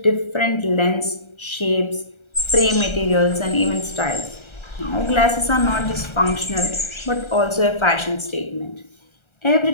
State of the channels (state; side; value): late; right; 1.3 ms